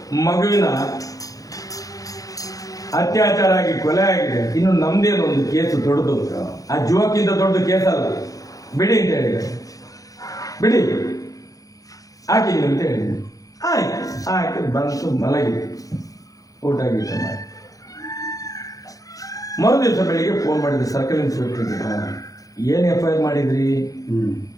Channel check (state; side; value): late; right; 0.17 ms